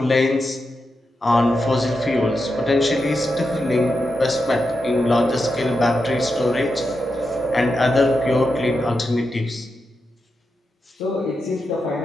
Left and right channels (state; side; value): normal; both; correlation 0.87